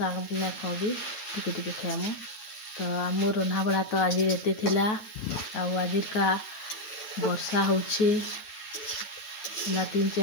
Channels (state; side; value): late; right; 9.3 ms